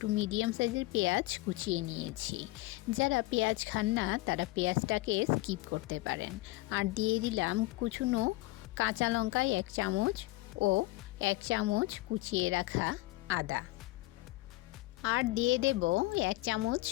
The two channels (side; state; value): right; quieter; 19.7 dB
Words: মিডিয়াম সাইজের পেঁয়াজ কুচিয়ে নিয়েছি। যারা পেঁয়াজ খান না তারা পেঁয়াজটাকে স্কিপ করতে পারেন। আর দিয়ে দিলাম কুচুনো কাঁচা লঙ্কা 1 চামচ ও 1 চামচ কুচিয়ে রাখা আদা। আর দিয়ে দেব 1 চামচ